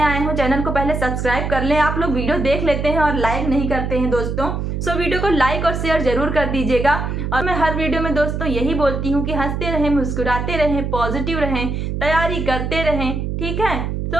आए हो चैनल को पहले सब्सक्राइब कर लें। आप लोग वीडियो देख लेते हैं और लाइक नहीं करते हैं दोस्तों, सो वीडियो को लाइक और शेयर जरूर कर दीजिएगा। और मैं हर वीडियो में दोस्तों यही बोलती हूँ कि हंसते रहें, मुस्कुराते रहें, पॉजिटिव रहें, तैयारी करते रहें। ठीक है, तो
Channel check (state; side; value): noise; right; hum, 2 dB below the sound